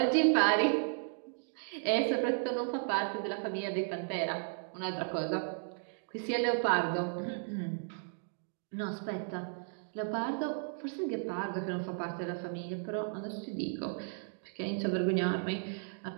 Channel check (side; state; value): left; silent; digital silence